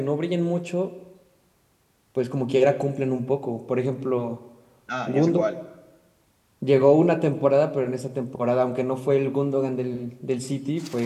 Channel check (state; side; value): identical; both; correlation 1.00